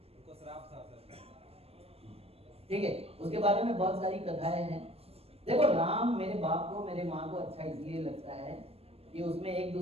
उनको श्राप था सर। ठीक है, उसके बारे में बहुत सारी कथाएं हैं। देखो, राम मेरे बाप को, मेरे माँ को अच्छा इसलिए लगता है कि उसमें एक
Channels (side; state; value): left; late; 0.29 ms